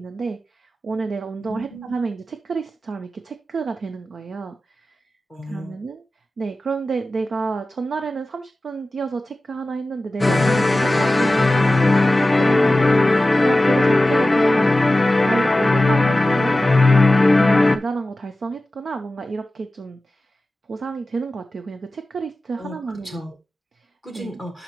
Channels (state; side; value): normal; both; correlation 0.95